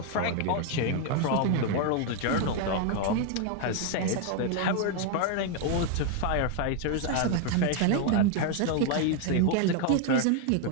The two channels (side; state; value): both; different; correlation 0.00